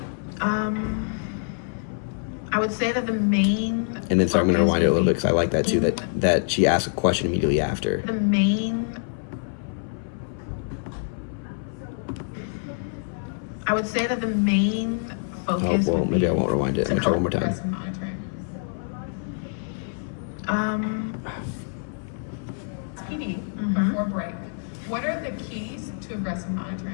I would say that the main And then, sorry, I'm going to focus rewind it a would little bit be- because I like that too. That she asked a question immediately after. the main I would say that the main Oh, focus well, would maybe be I won't rewind it. I'm going to try one more time. Aggressive monitoring. PD before break. What are the keys to aggressive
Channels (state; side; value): silent; right; 61 dB below the other